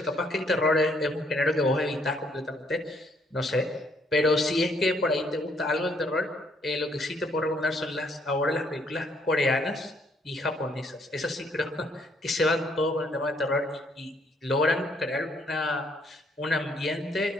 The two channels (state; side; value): normal; both; correlation 0.68